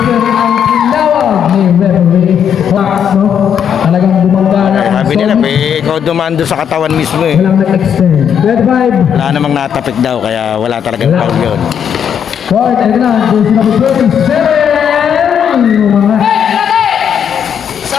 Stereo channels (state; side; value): quieter; right; 8.3 dB